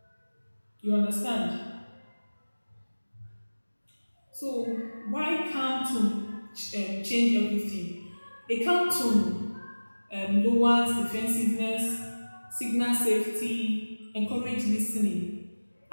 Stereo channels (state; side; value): inverted; both; correlation -1.00